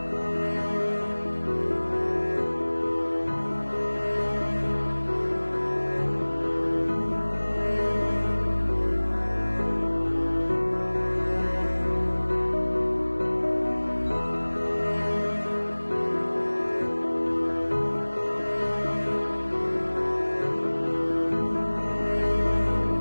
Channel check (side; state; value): both; inverted; correlation -1.00